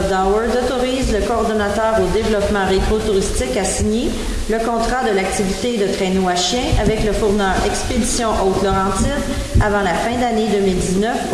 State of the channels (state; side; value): identical; both; correlation 1.00